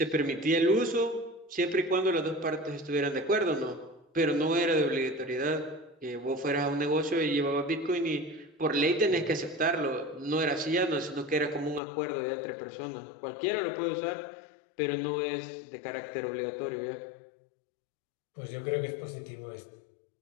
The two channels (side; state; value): right; drops out; at 11.8 s